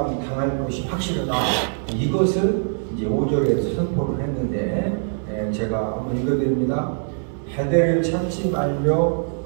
것이 확실하다, 이것을 이제 5절에서 선포를 했는데, 제가 한번 읽어드립니다. 베델을 찾지 말며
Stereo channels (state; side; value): silent; left; digital silence